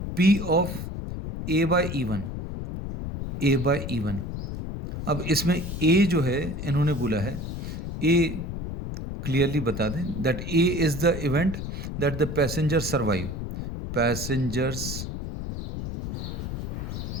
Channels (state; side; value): noise; left; rumble, 6 dB below the sound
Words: P of A by E1, A by E1. अब इसमें A जो है इन्होंने बोला है, A क्लियरली बता दें that A is the event that the passenger survive, passengers